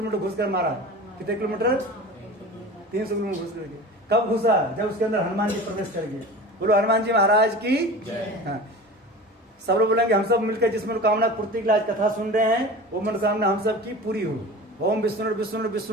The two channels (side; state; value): both; normal; correlation 0.35